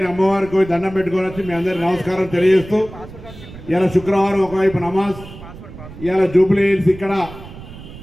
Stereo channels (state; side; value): noise; right; rumble, 15 dB below the sound